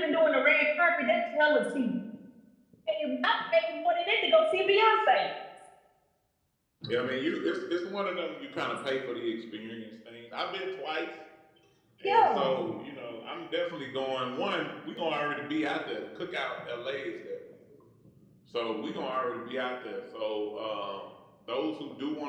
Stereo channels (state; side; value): identical; both; correlation 1.00